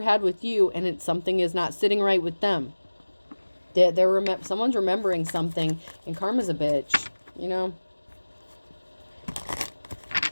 with you, and something is not sitting right with them. Someone's remembering something, and karma's a bitch, you know.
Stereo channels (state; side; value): inverted; both; correlation -1.00